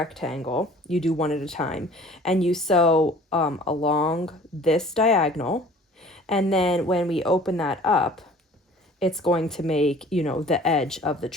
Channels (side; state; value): both; normal; correlation 0.49